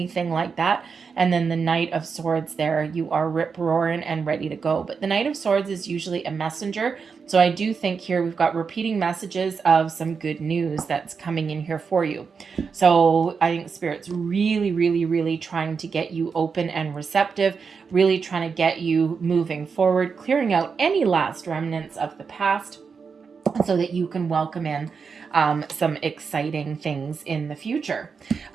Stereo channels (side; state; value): left; quieter; 5.6 dB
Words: like that. And then the Knight of Swords there, you are rip-roaring and ready to go. But the Knight of Swords is usually a messenger. So I do think here we've got repeating messages of some good news that's coming in here for you. So I think Spirit's really, really, really trying to get you open and receptive, really trying to get you moving forward, clearing out any last remnants of the past so that you can welcome in some exciting things in the future.